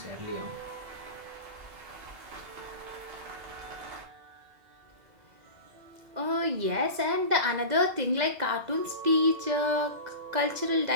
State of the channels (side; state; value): left; late; 2.0 ms